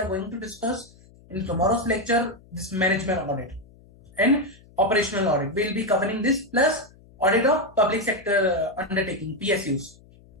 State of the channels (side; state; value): left; noise; hum, 26 dB below the sound